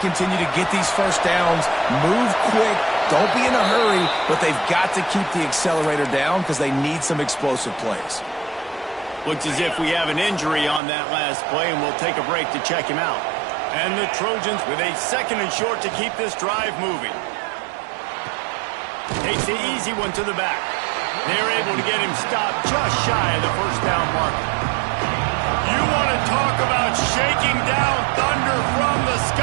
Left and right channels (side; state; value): left; drops out; at 10.8 s